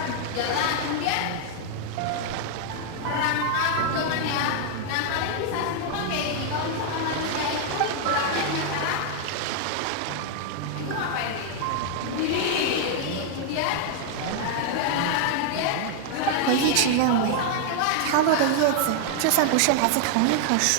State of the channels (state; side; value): different; both; correlation 0.00